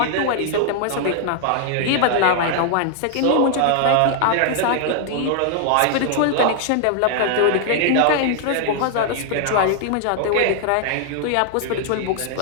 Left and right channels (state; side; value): different; both; correlation 0.00